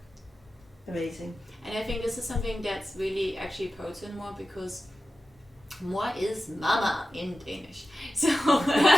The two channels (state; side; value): normal; both; correlation 0.94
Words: amazing. And I think this is something that's really actually potent more, because moi is mama in Danish. So,